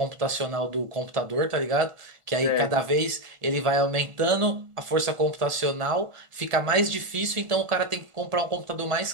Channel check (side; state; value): left; late; 1.5 ms